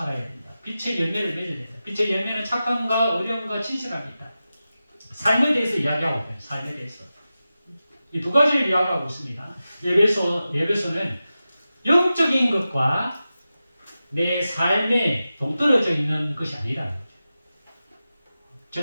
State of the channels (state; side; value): inverted; both; correlation -0.93